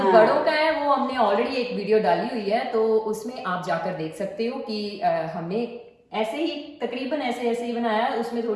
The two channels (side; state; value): both; identical; correlation 1.00